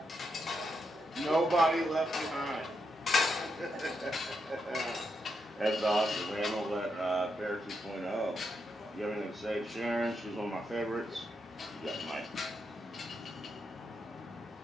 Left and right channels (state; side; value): normal; both; correlation 0.82